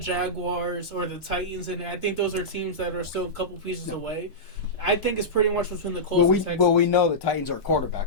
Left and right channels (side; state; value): both; normal; correlation -0.13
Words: or the Titans, and I think those are teams that are still a couple pieces away. I think it's pretty much between the Colts and Texans. Well, we know the Titans are a